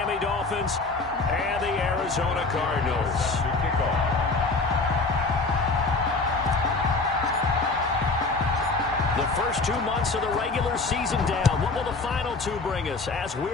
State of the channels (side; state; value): right; quieter; 3.7 dB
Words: Dolphins and the Arizona Cardinals. The first 2 months of the regular season down. What will the final two bring us as